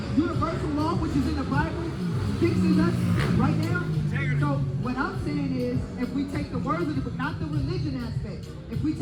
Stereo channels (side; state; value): both; identical; correlation 1.00